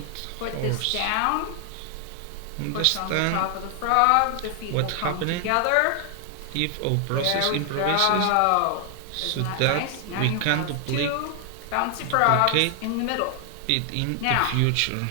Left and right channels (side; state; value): both; different; correlation 0.00